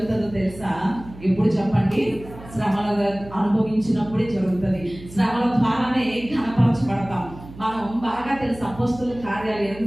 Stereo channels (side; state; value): right; noise; hum, 17 dB below the sound